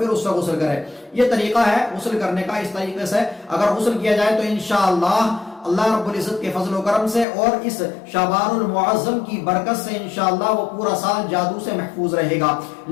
اس سے غسل کرے۔ یہ طریقہ ہے غسل کرنے کا۔ اس طریقے سے اگر غسل کیا جائے تو انشاءاللہ اللہ رب العزت کے فضل و کرم سے اور اس شعبان المعظم کی برکت سے انشاءاللہ وہ پورا سال جادو سے محفوظ رہے گا۔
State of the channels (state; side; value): drops out; right; at 7.2 s